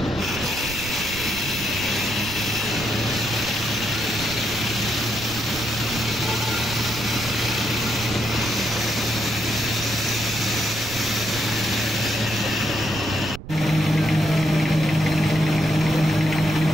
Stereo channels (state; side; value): noise; right; rumble, 12 dB below the sound